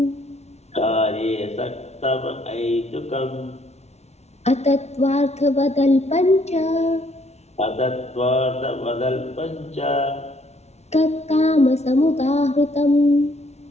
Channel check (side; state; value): right; late; 0.31 ms